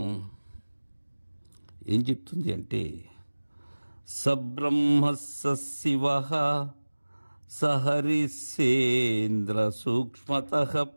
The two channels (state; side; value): inverted; both; correlation -1.00